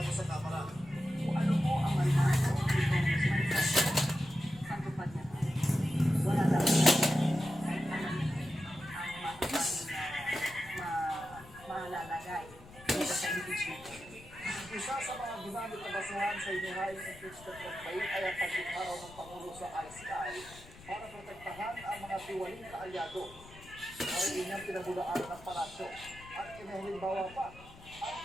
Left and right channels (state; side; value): noise; left; rumble, 20 dB below the sound